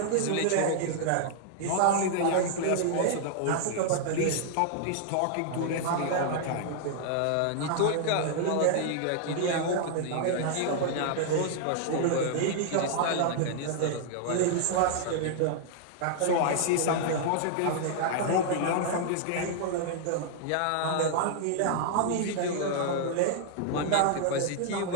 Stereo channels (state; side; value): different; both; correlation -0.01